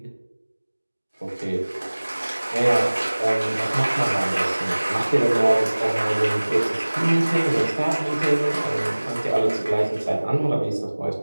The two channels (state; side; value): inverted; both; correlation -1.00